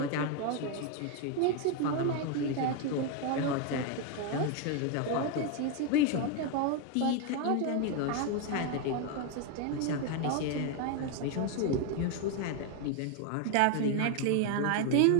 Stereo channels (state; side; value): different; both; correlation 0.01